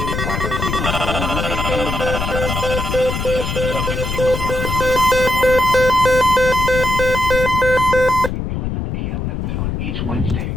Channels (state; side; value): noise; left; rumble, 3 dB below the sound